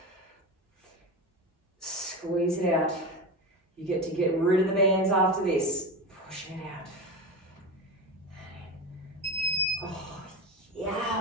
Squeeze it out. You get to get rid of the bands after this. Pushing it out. Oh,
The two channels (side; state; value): both; normal; correlation 0.23